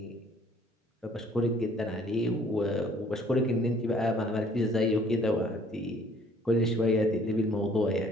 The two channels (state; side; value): normal; both; correlation 0.58